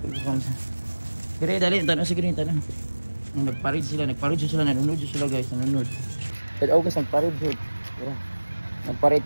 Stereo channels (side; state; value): both; inverted; correlation -1.00